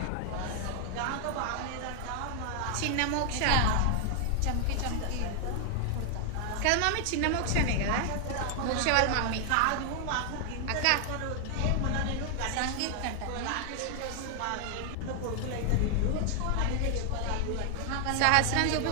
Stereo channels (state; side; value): different; both; correlation 0.00